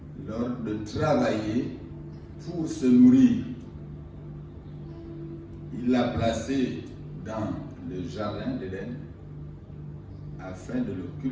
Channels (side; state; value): both; identical; correlation 1.00